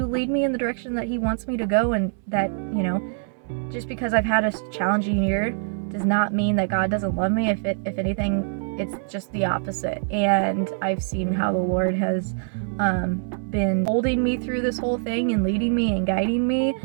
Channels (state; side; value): silent; left; digital silence